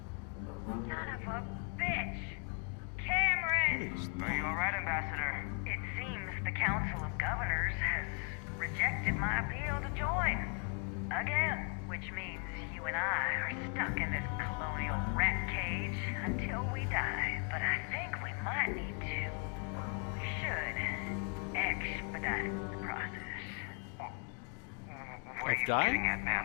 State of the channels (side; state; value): right; quieter; 39.6 dB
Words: bitch! Cameron! Are you alright, Ambassador? It seems the Council of Governors has rejected my appeal to join. Again, which means you and I are stuck in this colonial rat cage until we die. But I think we might need to. We should expedite the process. What are you getting at,